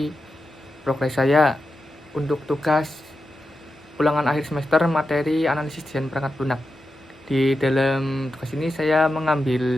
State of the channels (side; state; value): both; normal; correlation 0.90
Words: progres saya untuk tugas ulangan akhir semester materi analisis desain perangkat lunak. Di dalam tugas ini saya